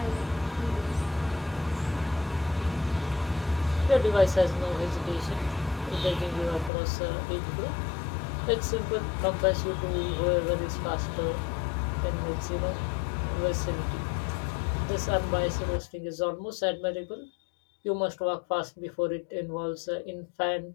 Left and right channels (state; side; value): drops out; right; at 6.7 s